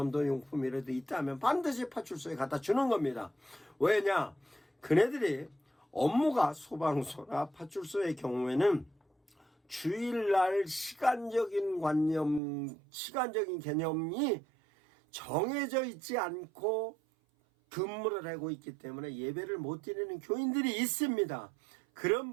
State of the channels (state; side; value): drops out; left; at 12.4 s